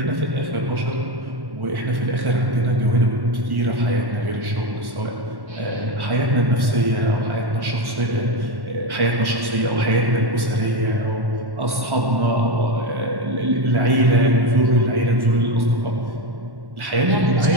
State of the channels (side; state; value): left; late; 1.1 ms